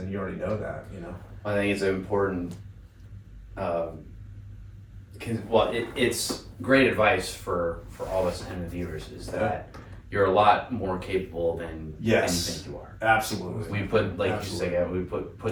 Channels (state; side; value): identical; both; correlation 1.00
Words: you already know that, I think it's important. It's great advice for all us and the viewers is that you're a lot more capable than you think you are. Absolutely. We put, like you say, we